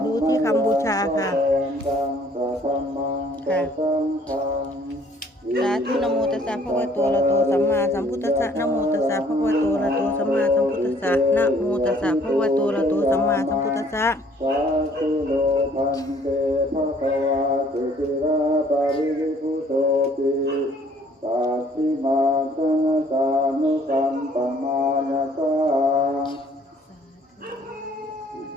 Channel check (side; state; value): both; normal; correlation 0.59